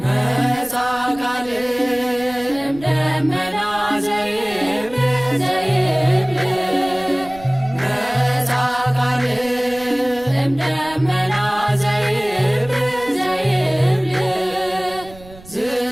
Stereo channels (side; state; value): right; noise; rumble, 21 dB below the sound